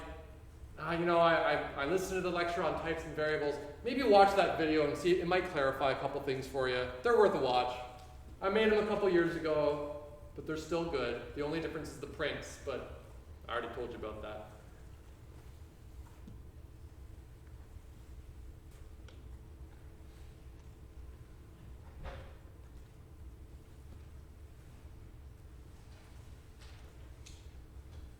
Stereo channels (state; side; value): identical; both; correlation 1.00